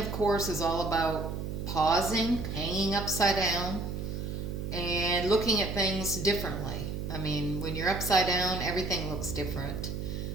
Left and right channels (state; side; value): noise; right; hum, 4 dB below the sound